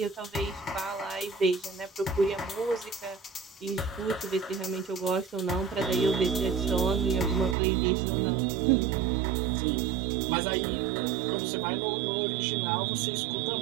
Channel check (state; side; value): drops out; left; at 7.6 s